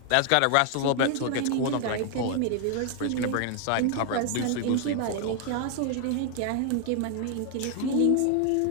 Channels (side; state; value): both; different; correlation 0.00